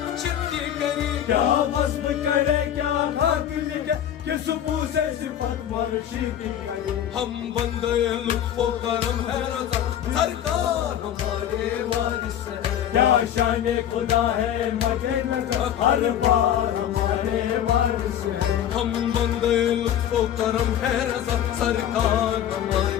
کی کرے کیا وصف کرے کیا خاک لکھے کس منہ سے صفت مرشد کی کرے ہم بندے لطف و کرم ہے رضا سرکار ہمارے وارث ہے کیا شان خدا ہے مد نظر ہر بار ہمارے وارث ہے ہم بندے لطف و کرم ہے رضا سرکار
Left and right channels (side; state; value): right; quieter; 10.3 dB